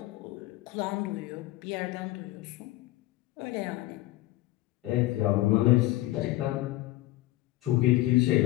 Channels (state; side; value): quieter; right; 17.2 dB